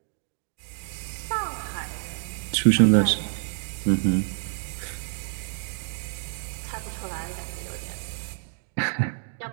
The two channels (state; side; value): silent; left; digital silence